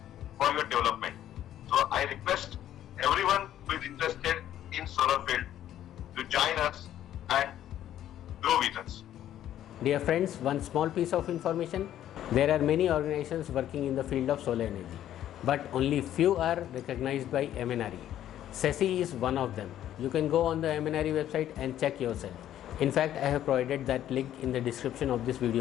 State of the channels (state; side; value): quieter; right; 11.7 dB